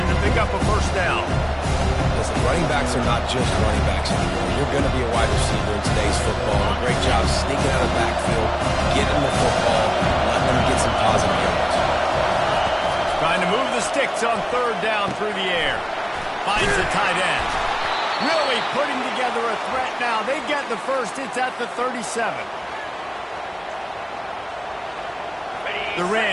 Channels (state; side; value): identical; both; correlation 1.00